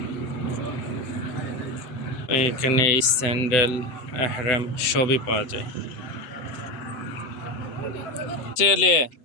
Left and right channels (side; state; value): right; late; 7.9 ms